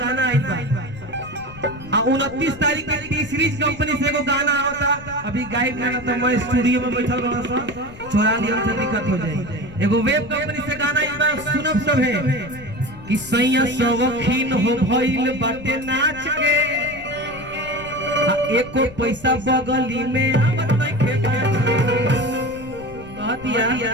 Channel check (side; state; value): left; noise; rumble, 18 dB below the sound